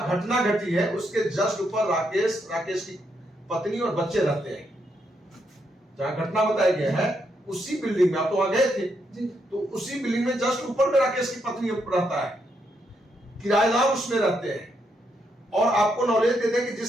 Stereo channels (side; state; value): both; normal; correlation 0.78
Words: घटना घटी है उसके जस्ट ऊपर राकेश की पत्नी और बच्चे रहते हैं। जहां घटना बताया गया है उसी बिल्डिंग में, आप तो वहां गए थे जी। तो उसी बिल्डिंग में जस्ट ऊपर में राकेश की पत्नी रहता है, किराएदार उसमें रहते हैं। और आपको नॉलेज दे दें कि